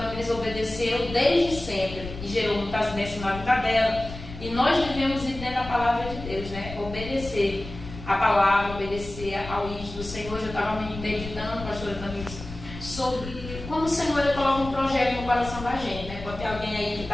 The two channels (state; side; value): noise; left; rumble, 11 dB below the sound